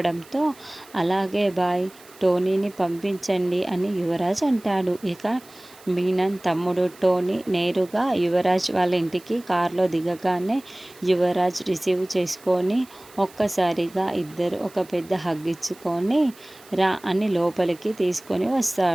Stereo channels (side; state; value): right; noise; hiss, 24 dB below the sound